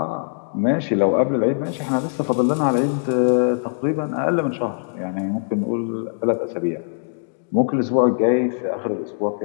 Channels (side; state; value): right; silent; digital silence